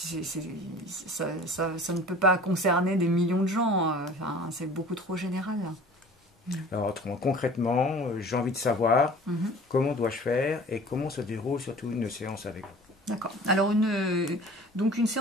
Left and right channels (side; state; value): both; normal; correlation 0.44